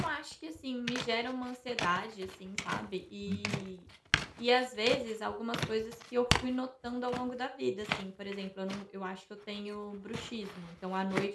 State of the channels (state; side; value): identical; both; correlation 1.00